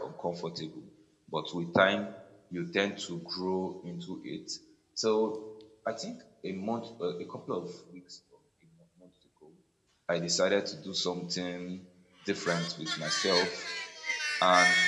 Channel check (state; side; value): identical; both; correlation 1.00